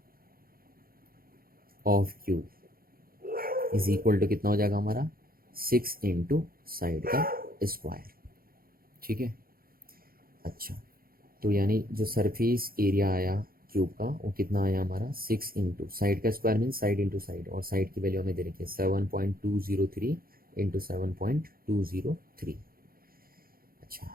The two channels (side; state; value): left; late; 0.43 ms